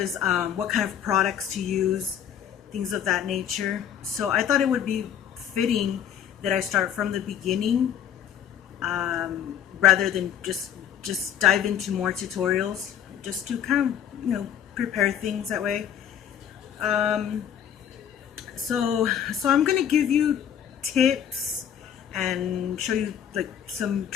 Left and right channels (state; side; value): quieter; right; 9.4 dB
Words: what kind of products to use, things of that nature. So I thought it would be fitting that I start from the beginning, rather than just dive into more tutorials, just to kind of prepare things that way. Um, so I'm gonna give you tips and show you like some